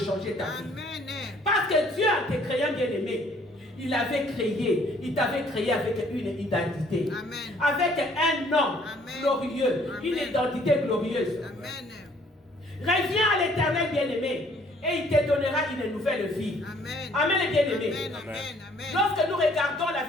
ta vie. Parce que Dieu, en te créant, bien-aimé, il t'avait créé avec une identité. Amen. Avec un nom glorieux, une identité glorieuse. Amen. Reviens à l'Éternel, bien-aimé. et il te donnera une nouvelle vie. Amen. Amen, les bien-aimés. Amen. Amen. Amen. Lorsque nous regardons la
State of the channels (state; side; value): normal; both; correlation 0.60